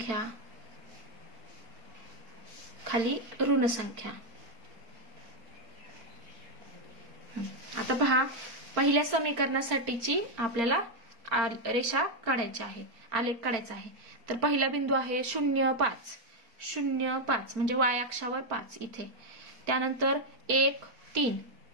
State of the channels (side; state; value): left; late; 4.4 ms